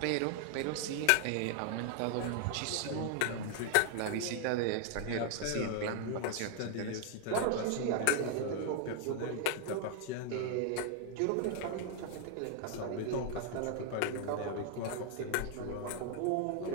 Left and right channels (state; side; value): different; both; correlation 0.00